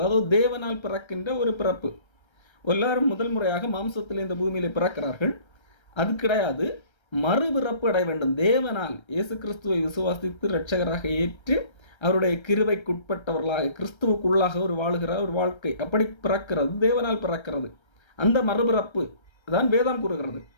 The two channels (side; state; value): right; late; 1.3 ms